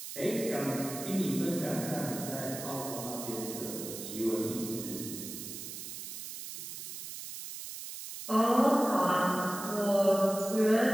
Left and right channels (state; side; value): noise; right; hiss, 9 dB below the sound